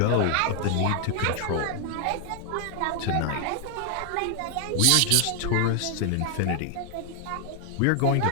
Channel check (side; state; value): both; different; correlation 0.00